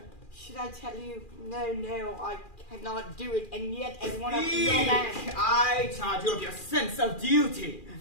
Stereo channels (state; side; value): late; right; 2.4 ms